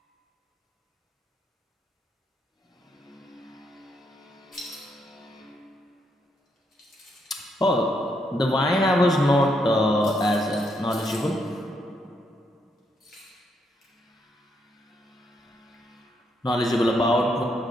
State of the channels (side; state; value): both; normal; correlation 0.77